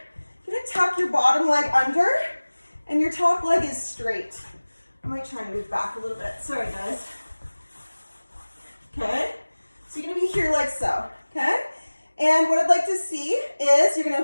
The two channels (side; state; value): both; inverted; correlation -1.00